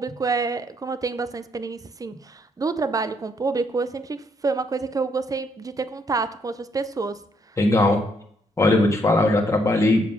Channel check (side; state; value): both; normal; correlation 0.72